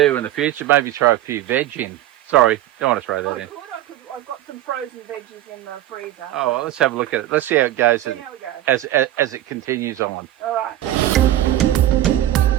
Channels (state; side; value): quieter; left; 13.4 dB